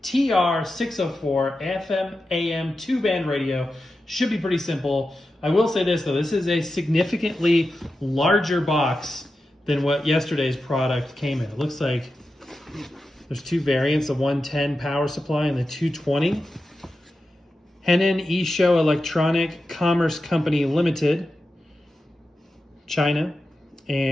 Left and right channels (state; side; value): normal; both; correlation 0.91